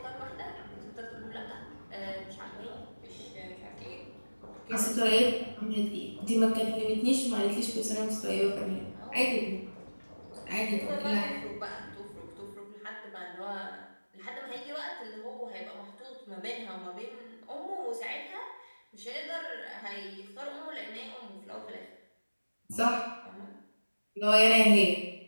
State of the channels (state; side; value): inverted; both; correlation -1.00